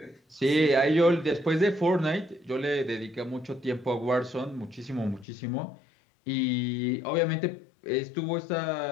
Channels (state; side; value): drops out; right; at 5.2 s